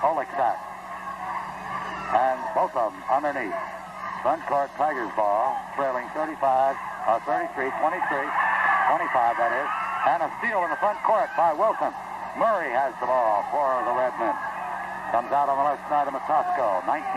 Oleksak. And both of them underneath. Front court, Tigers ball, trailing 33, 23, 25 that is. And a steal in the front court by Wilson. Murray has the ball for the Redmen. Comes out on the left side of Matosco. 19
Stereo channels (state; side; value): identical; both; correlation 1.00